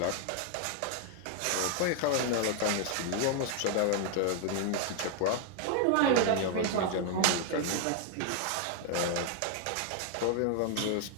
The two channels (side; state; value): both; different; correlation 0.00